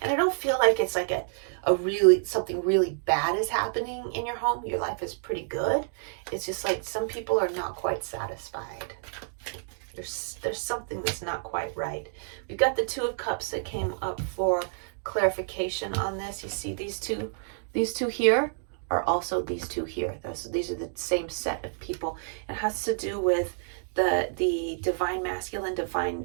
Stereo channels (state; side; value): silent; left; digital silence